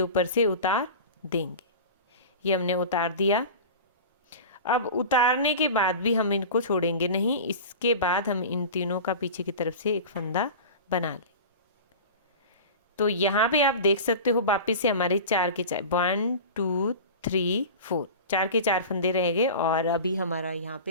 से उतार देंगे। ये हमने उतार दिया। अब उतारने के बाद भी हम इनको छोड़ेंगे नहीं, इसके बाद हम इन तीनों का पीछे की तरफ से एक फंदा बना लें। तो यहाँ पे आप देख सकते हो वापिस से हमारे 4 के 4 1 2 3 4 4 के 4 फंदे रह गए और अभी हमारा यहाँ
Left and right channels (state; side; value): inverted; both; correlation -0.32